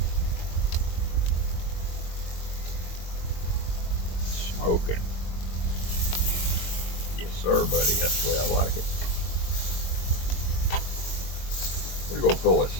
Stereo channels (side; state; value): right; late; 22 ms